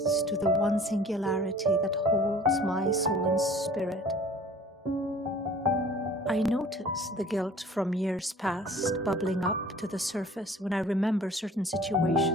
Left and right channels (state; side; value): normal; both; correlation 0.48